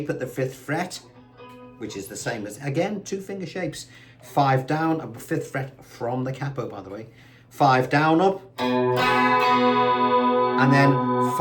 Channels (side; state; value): both; identical; correlation 1.00